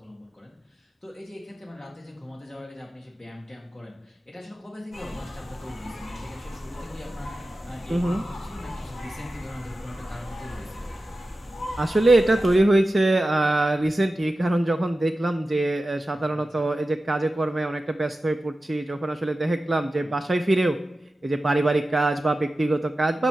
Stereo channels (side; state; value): both; normal; correlation 0.94